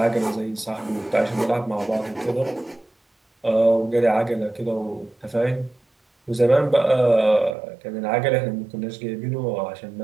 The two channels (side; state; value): left; drops out; at 7.6 s